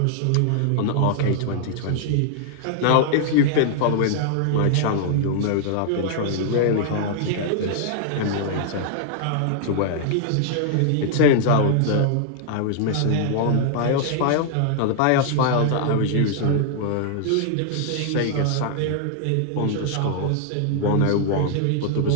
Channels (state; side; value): different; both; correlation -0.01